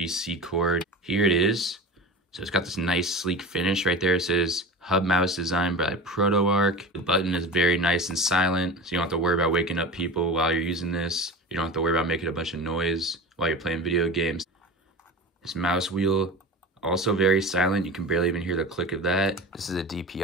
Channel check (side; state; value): both; normal; correlation 0.31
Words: cord. Here it is. So it's got this nice sleek finish right there. It says hub mouse designed by ProtoArc. The button is very nice and silent, so you don't have to worry about waking up people while you're using this. You don't have to worry about making a bunch of noise while you're playing video games. This mouse wheel, also very silent. You can barely even hear the click of that. This is a